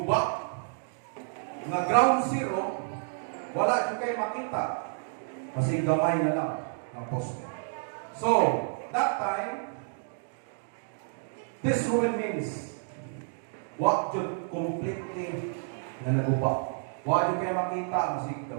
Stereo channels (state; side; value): silent; left; digital silence